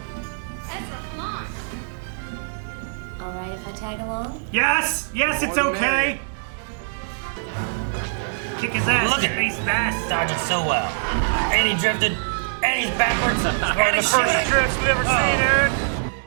Ezra, come on. All right, if I tag along. Yes! Yes, it's okay! Kick his ass, Look at space bass. Dodging so well. And he drifted. And he's backwards. One of the first drifts we've ever seen, Aaron.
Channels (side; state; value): left; silent; digital silence